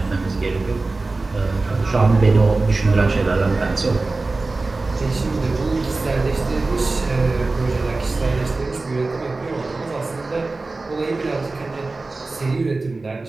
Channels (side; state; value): left; quieter; 3.5 dB